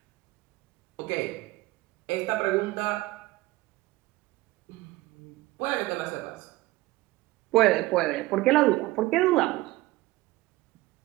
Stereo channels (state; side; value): quieter; left; 19.4 dB